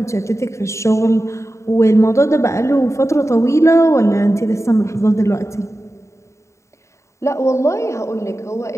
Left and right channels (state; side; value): late; right; 0.14 ms